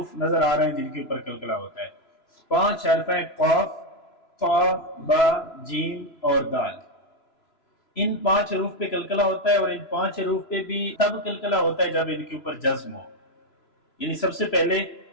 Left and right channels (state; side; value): late; right; 3.0 ms